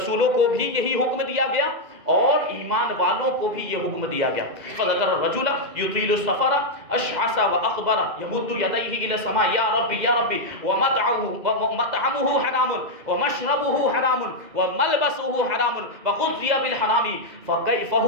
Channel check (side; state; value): left; late; 2.0 ms